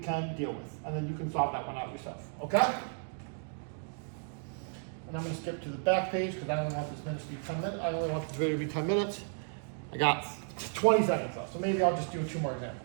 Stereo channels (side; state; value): left; silent; 55 dB below the other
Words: deal with. And then you can solve that one out yourself, okay? And I'm going to skip to the back page because I only want this minute to be 10 minutes. I only want this video to be 10 minutes. I got 20 seconds left, so maybe I'll just do 2 more